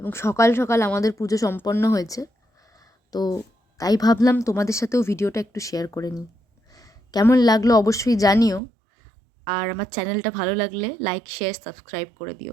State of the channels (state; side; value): drops out; left; at 8.6 s